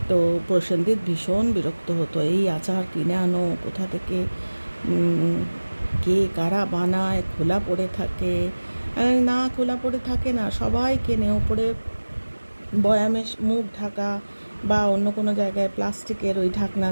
তো প্রসেনজিৎ ভীষণ বিরক্ত হতো, এই আচার কিনে আনো কোথা থেকে, কে কারা বানায়, খোলা পড়ে থাকে। না, খোলা পড়ে থাকে না, সবাই কেনে, ওপরে বয়ামে মুখ ঢাকা বা অন্য কোনো জায়গায় প্লাস্টিকের ওই ঢাকনা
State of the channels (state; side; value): inverted; both; correlation -1.00